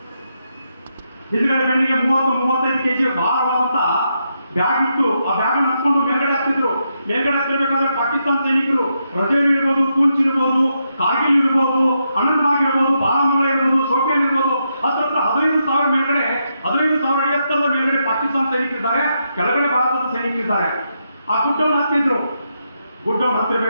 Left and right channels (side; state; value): both; inverted; correlation -0.82